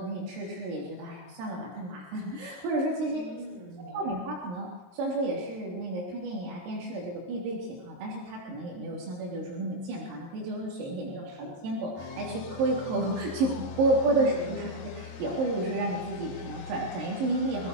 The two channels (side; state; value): left; late; 23 ms